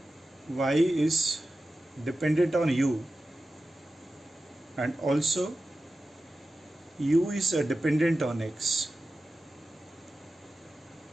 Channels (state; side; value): normal; both; correlation 0.93